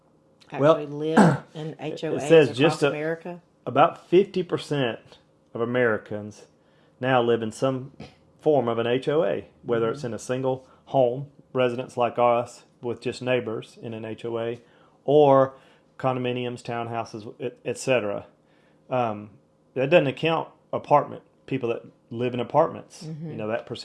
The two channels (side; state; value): both; identical; correlation 1.00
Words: actually live in HOAs it says across America? About 50% of Americans now live in some form of an HOA, whether it's in a single home residence like us with just neighbors in an HOA, or condominiums, townhouses, etc. That doesn't account people that live in apartments. That